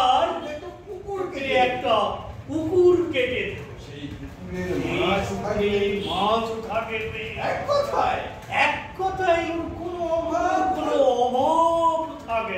একটা কুকুর একটা পুকুর কেটে সেই পুকুরের মাছ থাকবে, মাছ থাকবে। এক কথায় কোনো অভাব থাকবে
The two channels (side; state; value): both; identical; correlation 1.00